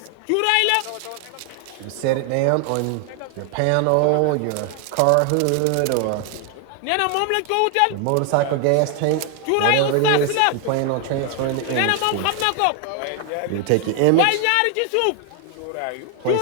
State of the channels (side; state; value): both; different; correlation 0.00